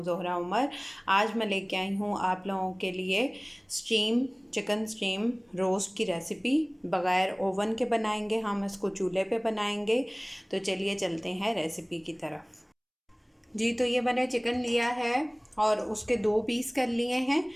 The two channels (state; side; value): identical; both; correlation 1.00